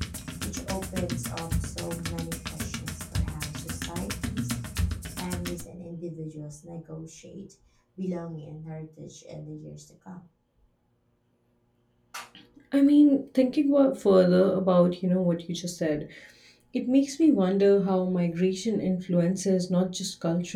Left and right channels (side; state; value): both; identical; correlation 1.00